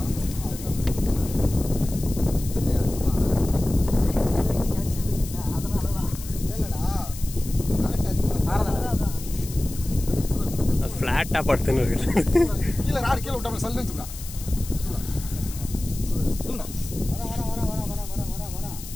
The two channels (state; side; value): noise; left; hiss, 13 dB below the sound